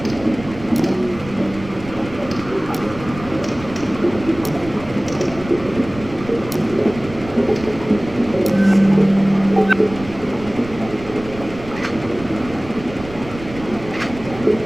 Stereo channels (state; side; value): noise; right; rumble, 15 dB below the sound